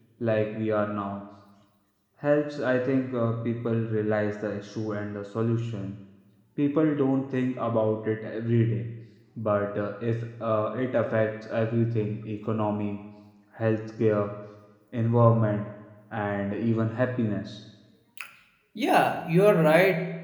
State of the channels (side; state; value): both; identical; correlation 1.00